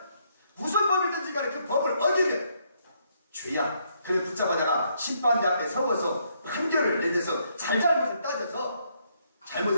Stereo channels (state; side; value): inverted; both; correlation -0.73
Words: 무슨 법이든지 간에 그 법을 어기면 죄야. 그래서 붙잡아다가 심판대 앞에 서워서 판결을 내려서 잘잘못을 따져서